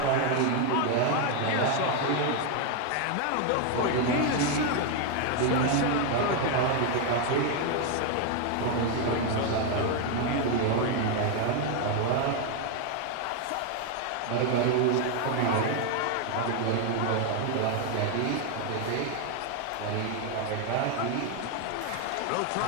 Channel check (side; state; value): both; different; correlation 0.01